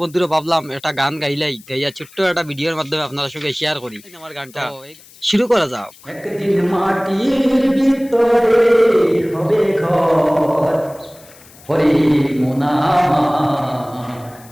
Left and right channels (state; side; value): noise; left; hiss, 24 dB below the sound